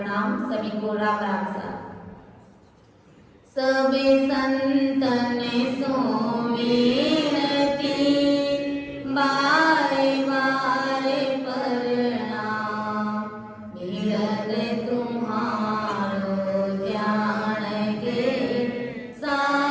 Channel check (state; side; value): identical; both; correlation 1.00